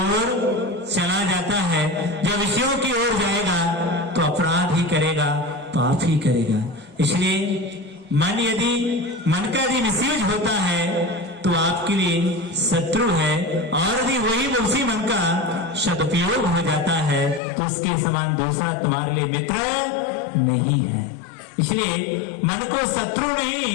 चला जाता है। जब विषयों की ओर जाएगा तो अपराध ही करेगा, पाप ही करेगा। इसलिए मन का यदि मिसयूज होता है तो आपके लिए शत्रु है, और यदि वही उसी मन का सदुपयोग हो जाता है तो उसके समान दूसरा तुम्हारे लिए मित्र नहीं है। इसलिए मन को शत्रु नहीं,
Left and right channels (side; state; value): right; drops out; at 17.4 s